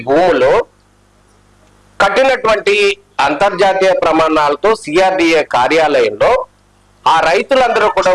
భూములు కట్టినటువంటి అంతర్జాతీయ ప్రమాణాలతో సిఆర్డిఏ కార్యాలయంలో ఆ రైతులందరూ కూడా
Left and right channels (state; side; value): identical; both; correlation 1.00